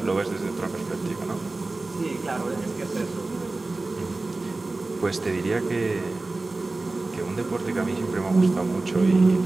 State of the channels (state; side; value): quieter; left; 3.3 dB